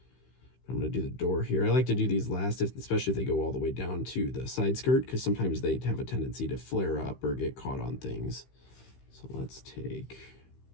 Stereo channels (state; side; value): late; right; 15 ms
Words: I'm going to do the door here. I like to do these last, especially if they go all the way down to the side skirt, because sometimes they have a tendency to flare up or get caught on things. So let's take